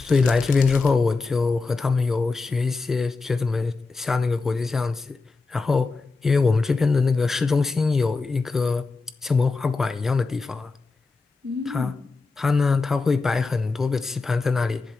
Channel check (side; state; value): right; quieter; 4.0 dB